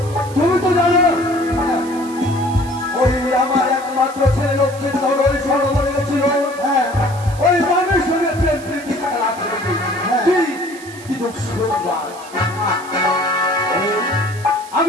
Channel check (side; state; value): right; noise; hiss, 18 dB below the sound